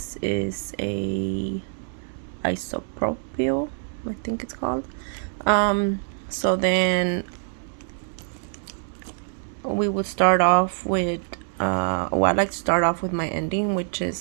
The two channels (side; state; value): left; silent; 62 dB below the other